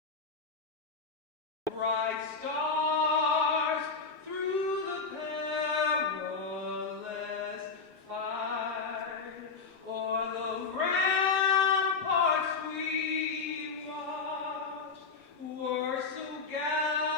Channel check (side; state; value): right; quieter; 4.6 dB